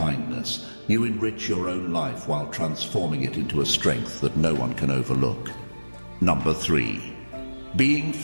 you enrich your own life while transforming it into a strength that no one can overlook. Number 3. Being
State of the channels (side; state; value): both; inverted; correlation -1.00